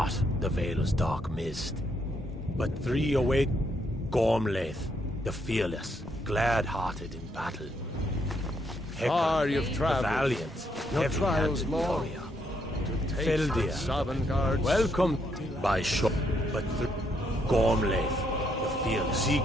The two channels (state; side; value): normal; both; correlation 0.74